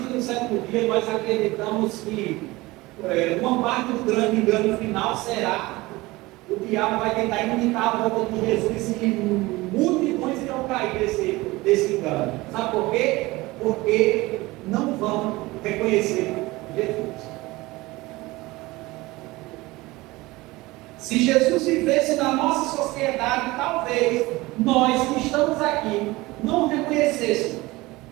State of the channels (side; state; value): left; quieter; 20.7 dB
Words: do sétimo dia, nós acreditamos que uma parte do grande engano final será: o diabo vai tentar imitar a volta de Jesus e multidões irão cair desse engano. Sabe por quê? Porque não vão reconhecer Jesus. Se Jesus vivesse na nossa sociedade, talvez nós que estamos aqui não reconhecêssemos.